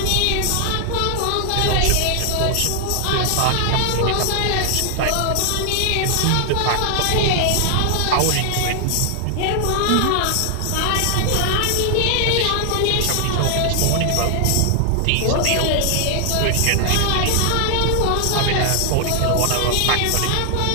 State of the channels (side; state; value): both; different; correlation 0.00